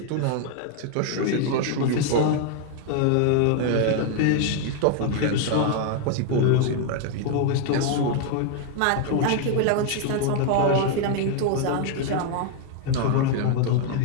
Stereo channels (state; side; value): different; both; correlation 0.00